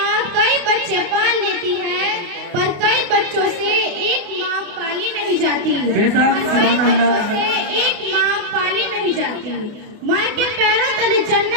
कई बच्चे पाल लेती है, पर कई बच्चों से एक माँ पाली नहीं जाती। कई बच्चों से एक माँ पाली नहीं जाती। माँ के पैरों तले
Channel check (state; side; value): late; left; 28 ms